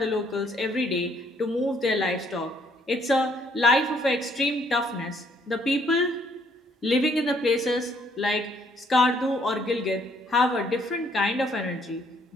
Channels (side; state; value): both; normal; correlation 0.66